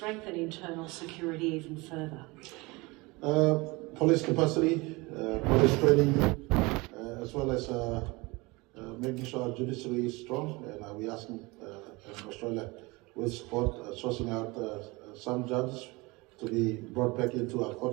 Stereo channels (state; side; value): quieter; left; 24.4 dB